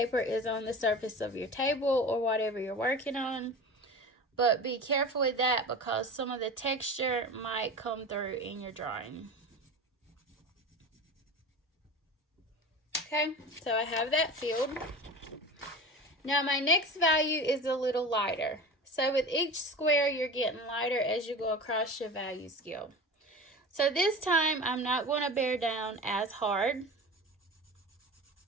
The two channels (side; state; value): both; normal; correlation 0.33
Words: is on the surface of your table or whatever you're working on. But be careful with that because some of the texture might come through in your drawing. Okay, so I have that filled. Now my next value is a little lighter. So with each square, you're getting lighter as you go across your value scale. So this time, I'm not going to bear down as hard,